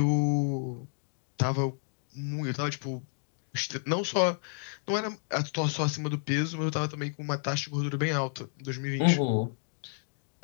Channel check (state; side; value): silent; right; digital silence